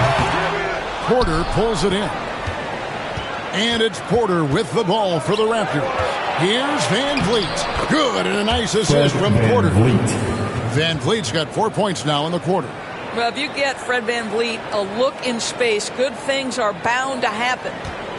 Porter pulls it in. And it's Porter with the ball for the Raptors. Here's Van Vliet. Good, and a nice assist from Porter. Van Vliet's got 4 points now in the quarter. Well, if you get Fred Van Vliet a look in space, good things are bound to happen.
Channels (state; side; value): identical; both; correlation 1.00